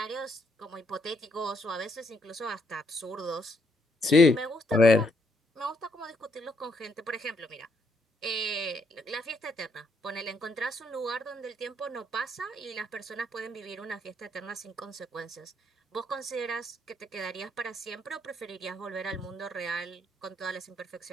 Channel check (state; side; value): normal; both; correlation 0.73